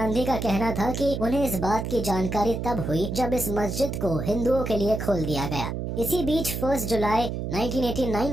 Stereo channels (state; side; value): noise; right; hum, 4 dB below the sound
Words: का कहना था कि उन्हें इस बात की जानकारी तब हुई जब इस मस्जिद को हिंदुओं के लिए खोल दिया गया। इसी बीच 1 जुलाई